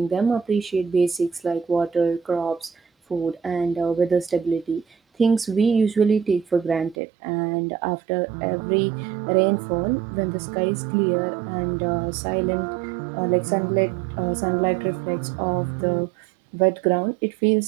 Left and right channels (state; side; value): drops out; left; at 7.0 s